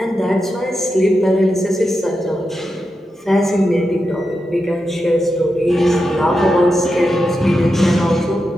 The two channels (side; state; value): both; normal; correlation 0.88